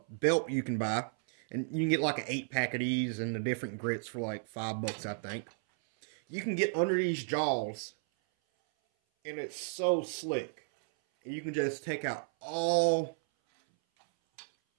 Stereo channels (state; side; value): silent; left; 56 dB below the other